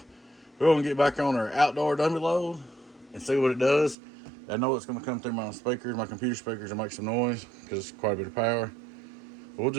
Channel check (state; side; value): drops out; left; at 4.0 s